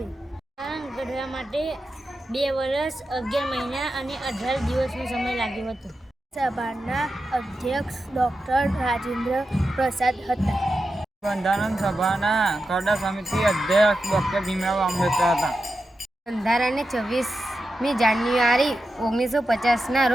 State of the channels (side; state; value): both; normal; correlation 0.90